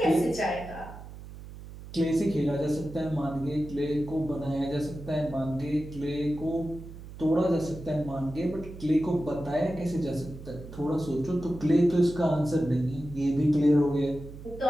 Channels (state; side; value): noise; right; hum, 14 dB below the sound